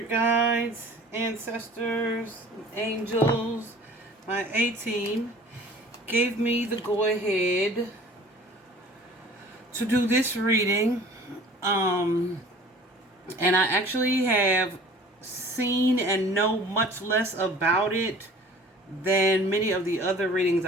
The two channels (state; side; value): normal; both; correlation 0.47